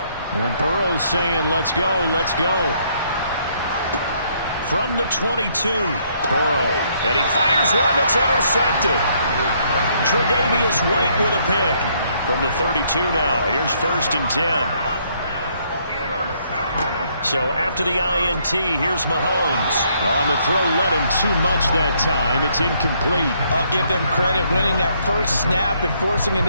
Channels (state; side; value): inverted; both; correlation -0.69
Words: And Burrow's saying, let's go, let's go. From the 22, Burrow. And he fires one that's intercepted. Tre'Davious White with a pick. From the 32 now, here's 1st and 10. So after the INT, here's Mahomes. On the throw, led him too much that time. It's incomplete. I'll give them credit winning that first snap and forcing an